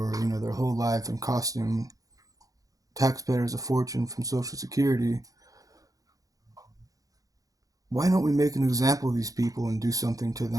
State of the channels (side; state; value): left; late; 0.17 ms